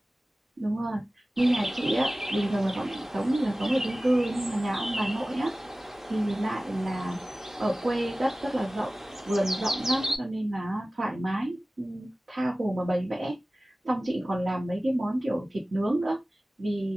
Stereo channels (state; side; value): normal; both; correlation 0.97